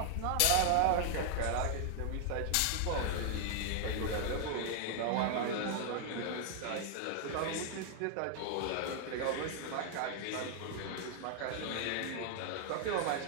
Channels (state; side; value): different; both; correlation 0.00